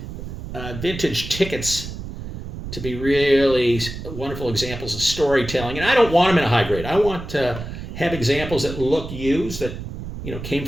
vintage tickets to be really wonderful examples of storytelling. And I don't want them in a high grade. I want to have examples that look used, that came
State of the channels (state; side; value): noise; right; rumble, 9 dB below the sound